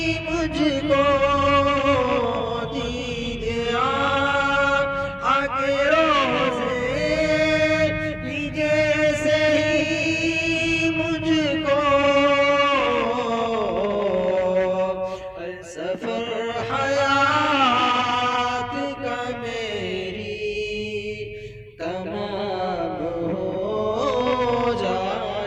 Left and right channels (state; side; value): identical; both; correlation 1.00